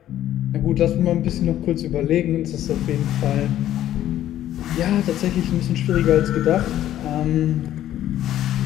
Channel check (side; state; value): right; quieter; 12.4 dB